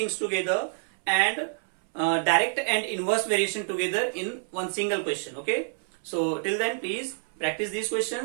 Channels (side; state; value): left; silent; 60 dB below the other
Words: together and direct and inverse variation together in one single question. Okay. So till then, please practice these